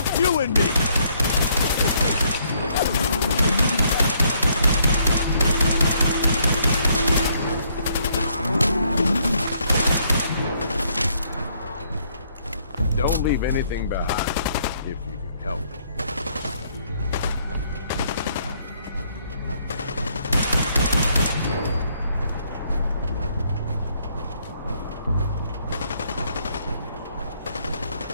You and me! Don't leave anything behind, if you can help it.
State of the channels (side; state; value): both; inverted; correlation -0.69